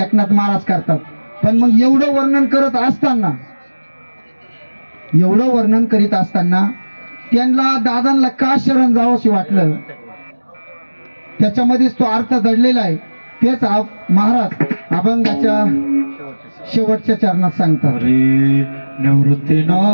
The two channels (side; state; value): both; inverted; correlation -1.00